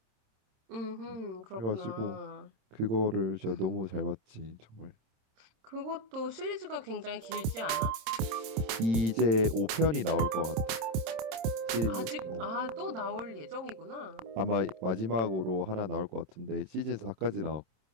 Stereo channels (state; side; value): late; left; 27 ms